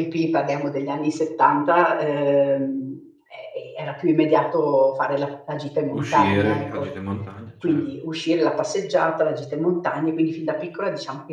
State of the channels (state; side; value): identical; both; correlation 1.00